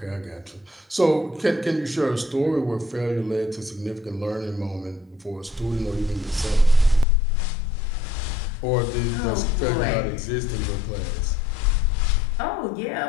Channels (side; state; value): right; drops out; at 7.1 s